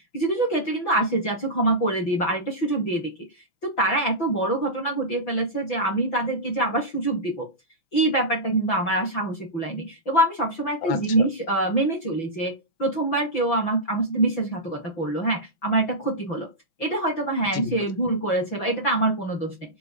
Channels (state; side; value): late; right; 5.9 ms